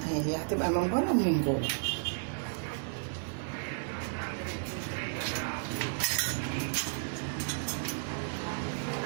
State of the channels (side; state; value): left; silent; digital silence